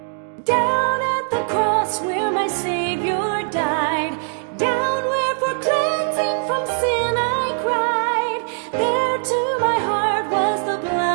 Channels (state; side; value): silent; left; digital silence